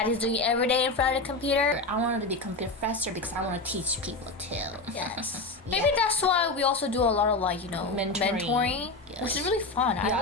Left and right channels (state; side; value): quieter; right; 3.2 dB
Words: is doing every day in front of the computer. I wanted to be a professor because I want to teach people too. Yes. Maybe that's why we also do a lot of like, mentoring, which is really fun. Yeah,